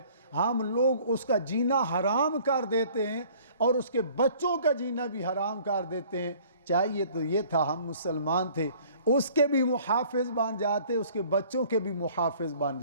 ہم لوگ اس کا جینا حرام کر دیتے ہیں اور اس کے بچوں کا جینا بھی حرام کر دیتے ہیں۔ چاہیے تو یہ تھا ہم مسلمان تھے، اس کے بھی محافظ بن جاتے، اس کے بچوں کے بھی محافظ بن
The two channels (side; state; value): both; inverted; correlation -0.54